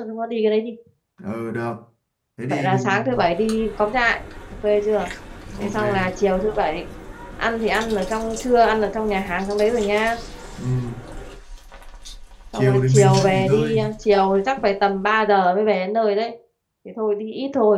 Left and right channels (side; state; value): both; identical; correlation 1.00